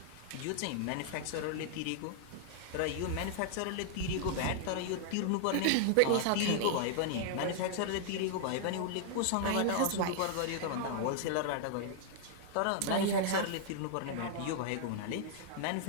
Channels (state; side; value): different; both; correlation -0.01